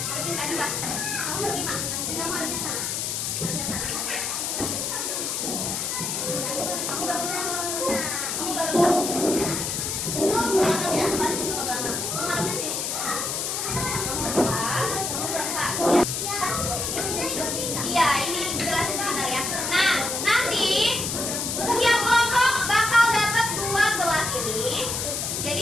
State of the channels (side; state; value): left; noise; hiss, 1 dB below the sound